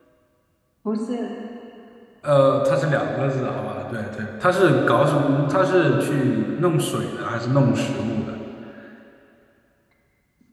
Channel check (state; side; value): identical; both; correlation 1.00